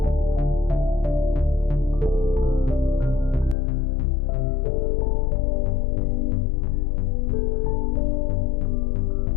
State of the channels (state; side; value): drops out; right; at 3.6 s